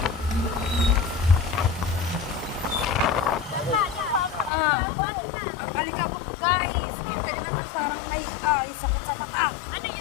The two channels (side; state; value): right; drops out; at 4.5 s